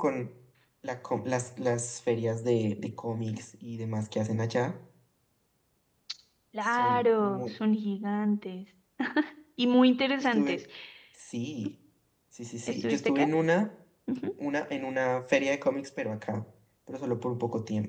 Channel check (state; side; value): identical; both; correlation 1.00